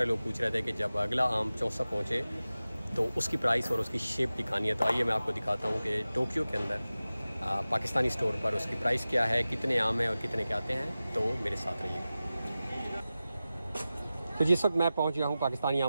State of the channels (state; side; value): inverted; both; correlation -0.95